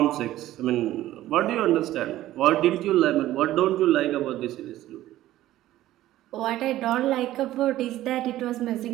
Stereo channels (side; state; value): left; quieter; 14.6 dB